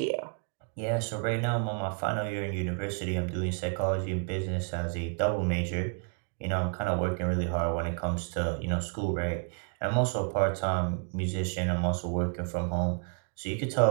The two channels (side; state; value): left; quieter; 38.0 dB